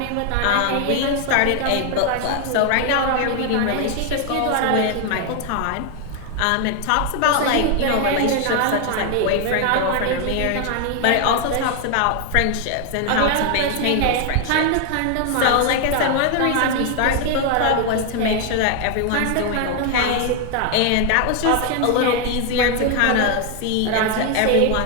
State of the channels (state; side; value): different; both; correlation 0.00